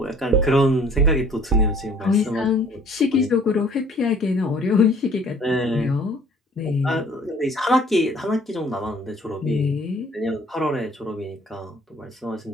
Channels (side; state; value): both; normal; correlation 0.55